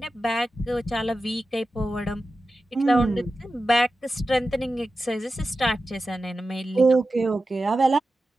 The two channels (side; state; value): both; normal; correlation 0.92